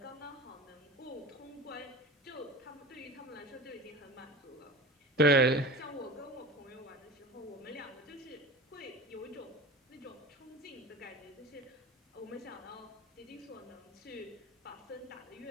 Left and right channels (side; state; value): both; normal; correlation 0.34